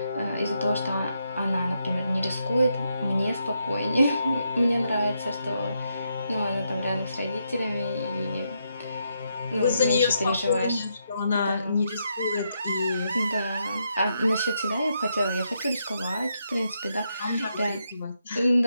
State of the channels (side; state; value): both; inverted; correlation -0.80